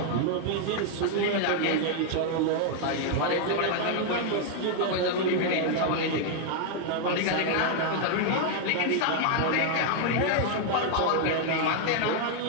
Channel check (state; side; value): different; both; correlation 0.00